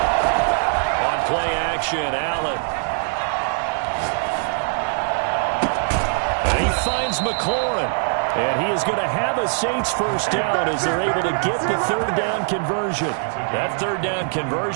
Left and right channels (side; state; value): left; silent; 57 dB below the other